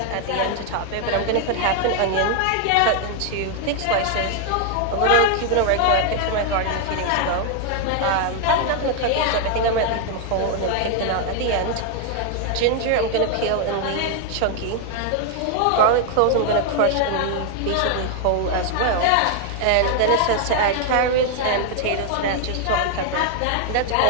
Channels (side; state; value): both; different; correlation 0.00